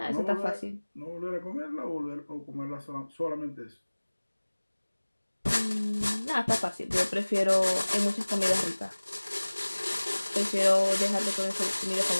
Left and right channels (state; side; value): inverted; both; correlation -1.00